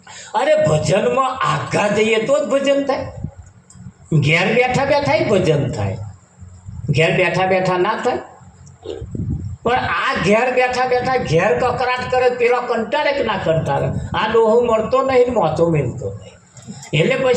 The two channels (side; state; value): both; identical; correlation 1.00